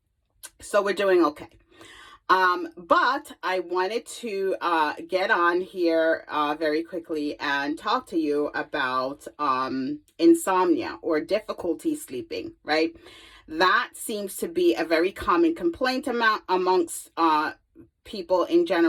So we're doing okay. But I wanted to get on here very quickly and talk to you about insomnia or difficulty sleeping, right? That seems to be a very common complaint amongst people in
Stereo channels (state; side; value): identical; both; correlation 1.00